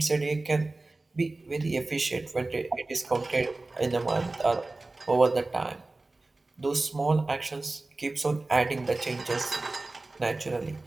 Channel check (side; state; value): left; quieter; 3.1 dB